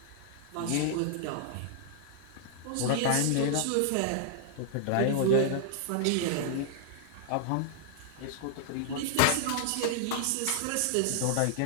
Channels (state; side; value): different; both; correlation -0.01